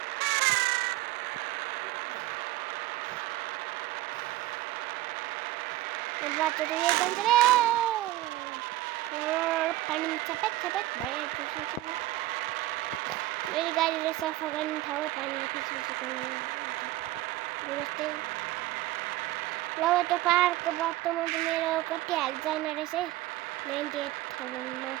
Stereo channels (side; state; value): left; quieter; 16.9 dB